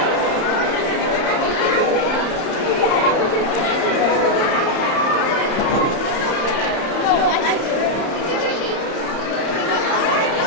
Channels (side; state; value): right; late; 31 ms